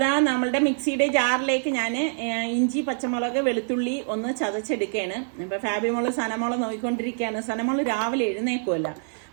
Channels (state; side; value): silent; left; 58 dB below the other